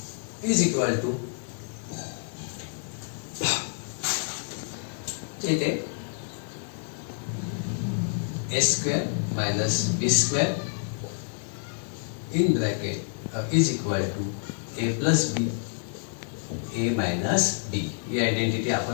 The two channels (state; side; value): silent; right; 59 dB below the other